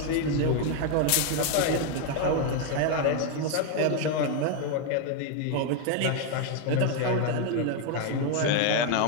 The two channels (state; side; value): different; both; correlation 0.01